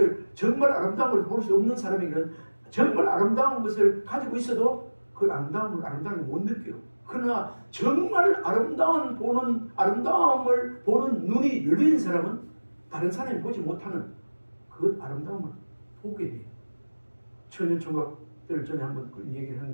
정말 아름다운 걸 볼 수 없는 사람에게는 정말 아름다운 것을 가지고 있어도 그 아름다움을 못 느껴요. 그러나 정말 아름다움을 보는 눈이 열린 사람은 다른 사람이 보지 못하는 그 아름다움을 보게 돼요. 처녀총각들 전에 한번 그 얘기를 한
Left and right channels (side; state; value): both; inverted; correlation -1.00